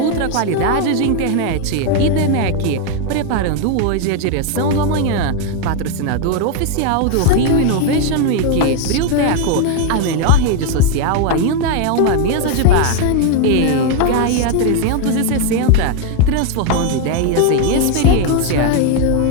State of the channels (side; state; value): both; different; correlation 0.01